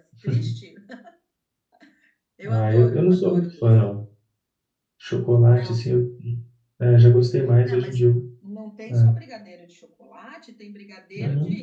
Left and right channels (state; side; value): identical; both; correlation 1.00